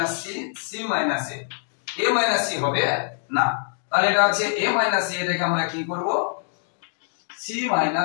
c, c minus a, a minus c হবে না, তাহলে এটা আছে a minus a, এটাকে আমরা কি করব, c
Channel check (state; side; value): silent; right; 62 dB below the other